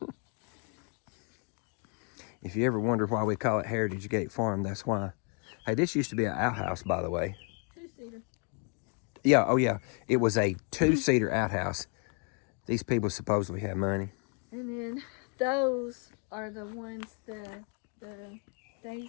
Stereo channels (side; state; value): right; quieter; 37.3 dB